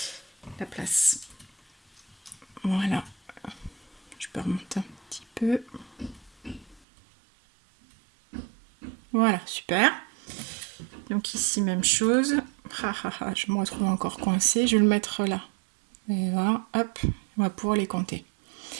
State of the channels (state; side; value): drops out; left; at 6.8 s